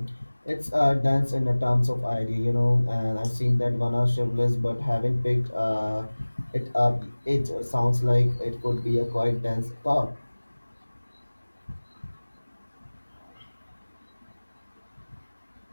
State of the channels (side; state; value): both; inverted; correlation -1.00